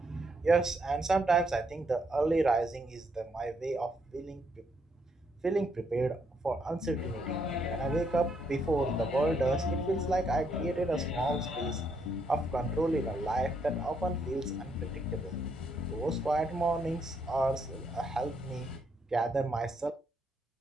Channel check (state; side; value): normal; both; correlation 0.74